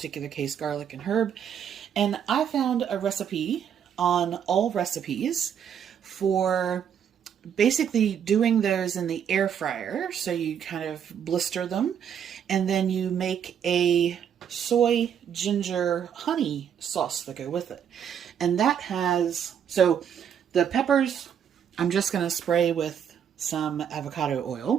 case, garlic and herb. And I found a recipe on All Recipes for basically doing those in the air fryer. So you kind of blister them and then you make a soy ginger honey sauce to go with it. And that has, so the peppers, I'm just going to spray with some avocado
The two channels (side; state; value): left; quieter; 8.5 dB